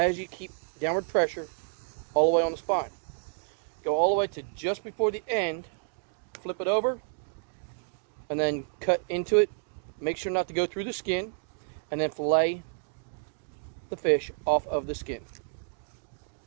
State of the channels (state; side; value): silent; left; 58 dB below the other